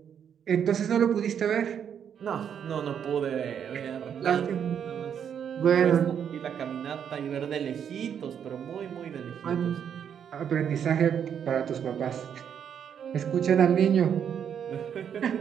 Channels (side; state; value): left; quieter; 8.3 dB